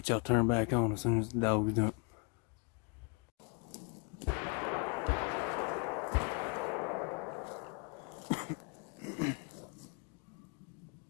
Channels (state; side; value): quieter; right; 33.6 dB